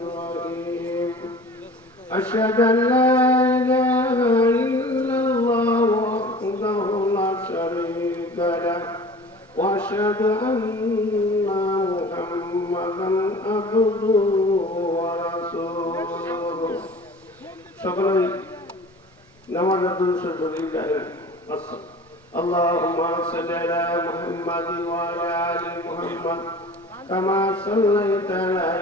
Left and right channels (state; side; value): normal; both; correlation 0.42